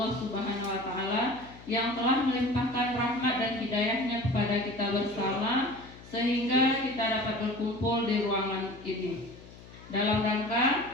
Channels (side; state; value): left; noise; hum, 19 dB below the sound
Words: Subhanahu wa Ta'ala yang telah melimpahkan rahmat dan hidayahnya kepada kita bersama sehingga kita dapat berkumpul di ruangan ini dalam